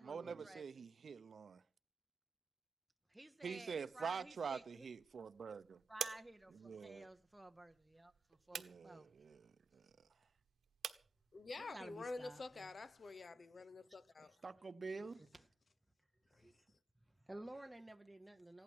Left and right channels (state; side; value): quieter; left; 3.6 dB